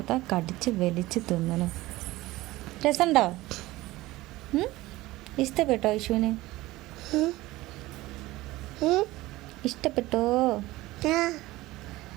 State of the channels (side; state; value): left; quieter; 18.4 dB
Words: കടിച്ച് വലിച്ച് തിന്നണ്. രസമുണ്ടോ? ഇഷ്ടപ്പെട്ടോ ഐഷുവിന്? ഇഷ്ടപ്പെട്ടോ?